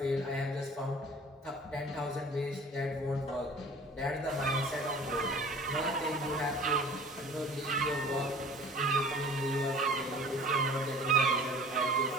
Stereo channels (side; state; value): both; normal; correlation 0.45